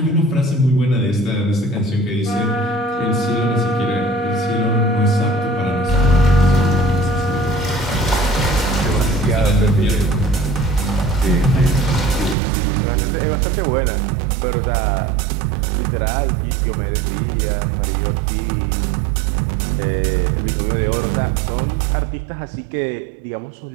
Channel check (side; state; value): left; drops out; at 12.4 s